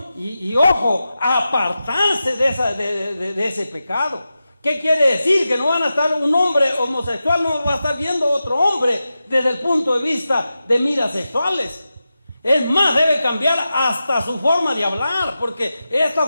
y ojo, apartarse de ese pecado. ¿Qué quiere decir? Que no van a estar, un hombre homosexual no va a estar viendo a otro hombre desde el punto de vista de miras sexuales. Es más, debe cambiar hasta su forma de hablar, porque esta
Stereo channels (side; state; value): both; inverted; correlation -0.92